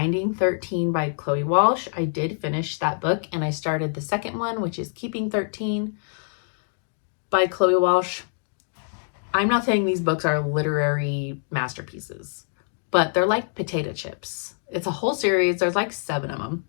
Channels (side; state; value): right; silent; digital silence